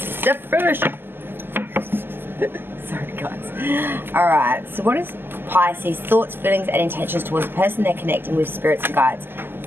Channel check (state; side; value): late; left; 0.10 ms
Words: the first. Sorry guys. Alright, so what is Pisces thoughts, feelings and intentions towards the person they're connecting with, spirits and guides